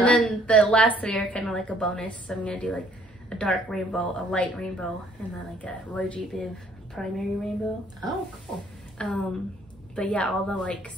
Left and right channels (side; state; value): both; normal; correlation 0.61